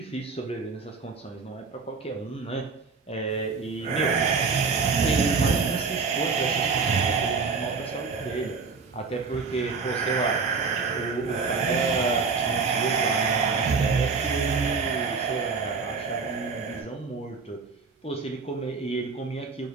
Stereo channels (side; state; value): left; quieter; 4.8 dB